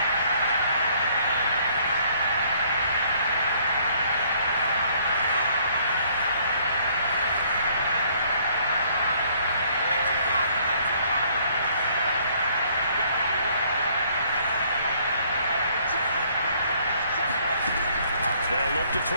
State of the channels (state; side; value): inverted; both; correlation -0.63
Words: They'll look to throw